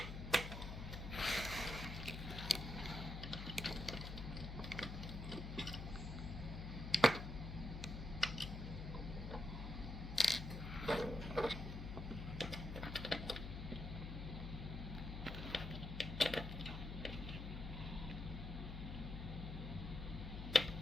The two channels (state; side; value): noise; left; hum, 6 dB below the sound